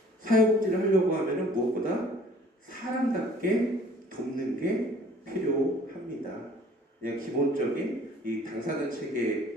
사회복지를 하려고 하면은 무엇보다 사람답게 돕는 게 필요합니다. 그냥 기본적인 이 당사자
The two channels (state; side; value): normal; both; correlation 0.53